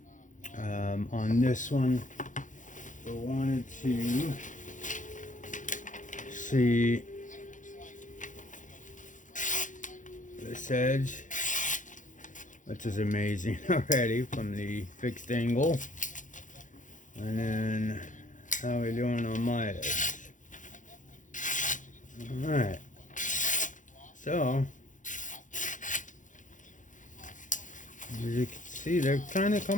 On this one, I wanted to see this edge, which is amazing already from the fixed angle, and then how we doing on my edge. Alright, so as you can see, they're kind of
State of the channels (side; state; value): right; late; 0.37 ms